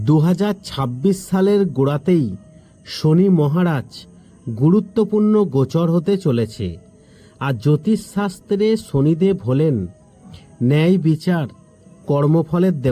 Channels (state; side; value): identical; both; correlation 1.00